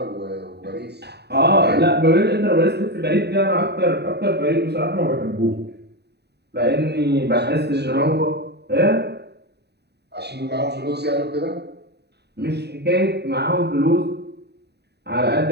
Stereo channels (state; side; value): late; left; 0.48 ms